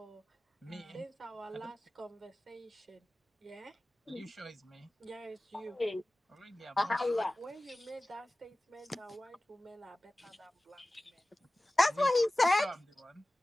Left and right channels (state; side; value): normal; both; correlation 0.97